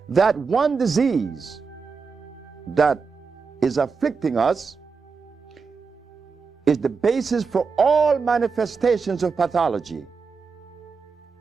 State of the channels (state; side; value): quieter; left; 5.2 dB